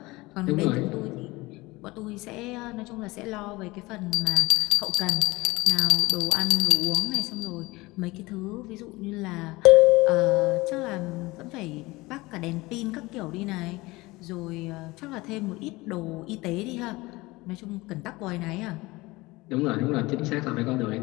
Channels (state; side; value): quieter; right; 21.5 dB